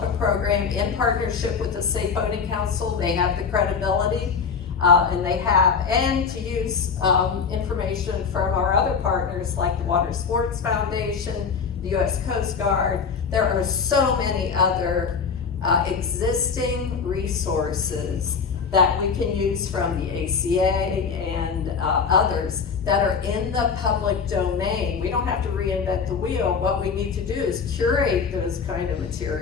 a program in partnership with the Safe Boating Council. They have the credibility and to use information from our other partners like the Water Sports Foundation, the U.S. Coast Guard. There are so many other existing resources that we can use from the ACA and others that are in the public domain. We don't have to reinvent the wheel. What we need to do is curate those kind of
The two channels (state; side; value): quieter; right; 5.8 dB